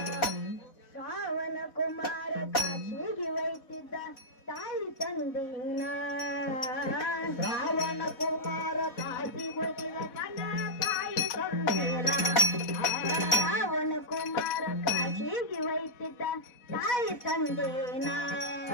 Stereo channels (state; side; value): late; right; 4.1 ms